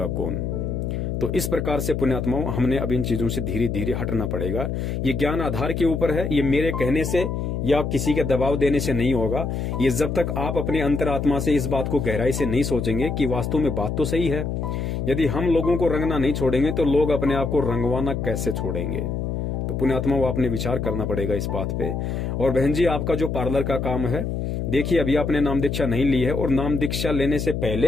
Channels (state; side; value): noise; left; hum, 2 dB below the sound